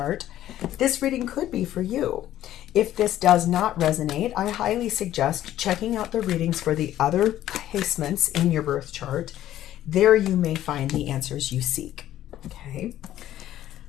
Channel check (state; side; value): quieter; right; 12.8 dB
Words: this reading could be for you. If this does not resonate, I highly suggest checking out the readings for the other placements in your birth chart. There you may find the answers you seek. Okay.